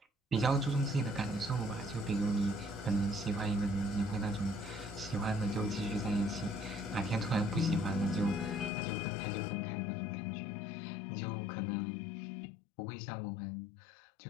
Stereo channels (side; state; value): right; drops out; at 8.7 s